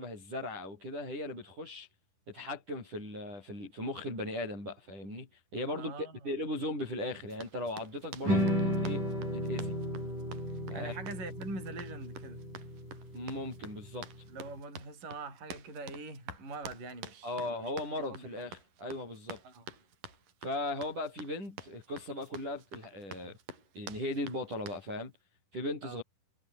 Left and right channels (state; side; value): late; left; 10 ms